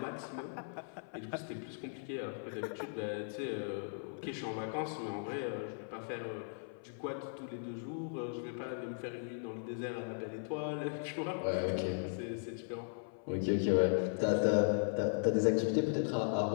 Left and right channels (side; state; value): right; silent; 53 dB below the other